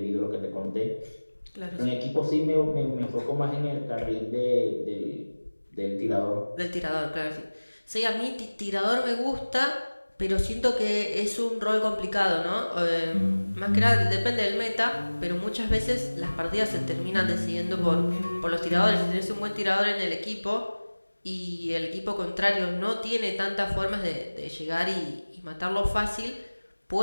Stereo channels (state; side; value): inverted; both; correlation -1.00